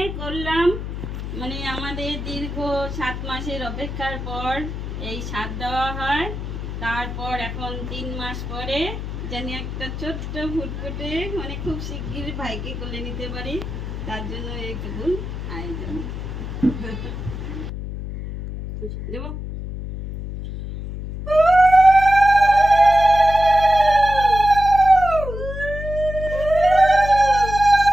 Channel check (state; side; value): noise; left; hum, 7 dB below the sound